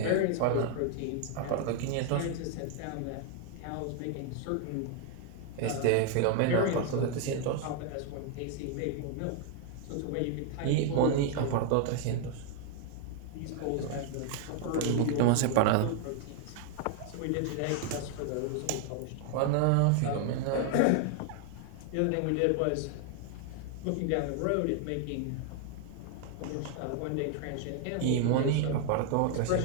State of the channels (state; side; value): different; both; correlation 0.00